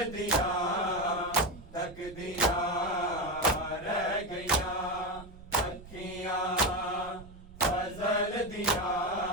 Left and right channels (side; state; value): right; noise; rumble, 18 dB below the sound